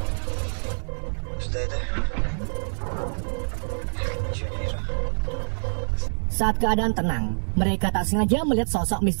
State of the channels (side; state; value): left; silent; digital silence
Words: Saat keadaan tenang, mereka tak sengaja melihat sosok